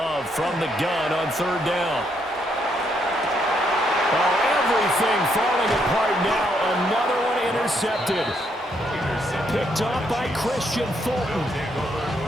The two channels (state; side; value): normal; both; correlation 0.74